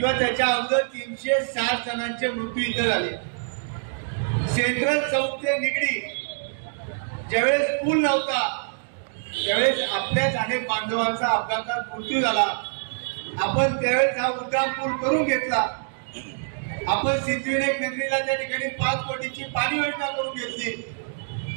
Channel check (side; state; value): left; silent; digital silence